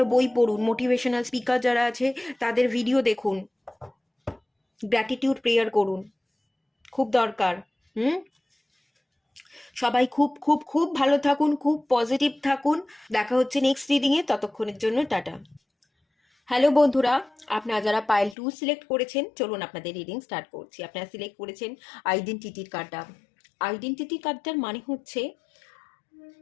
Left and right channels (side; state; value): right; drops out; at 18.4 s